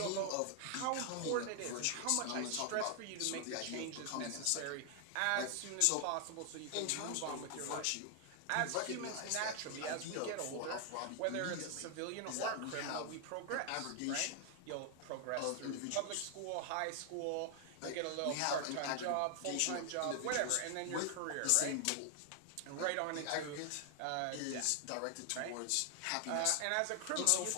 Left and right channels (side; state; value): both; different; correlation 0.00